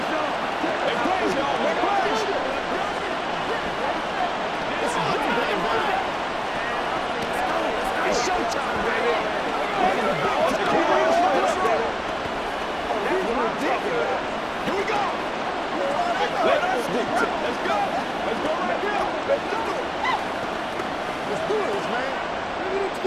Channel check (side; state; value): both; identical; correlation 1.00